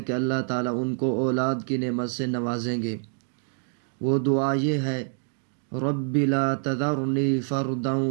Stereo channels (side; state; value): left; silent; 56 dB below the other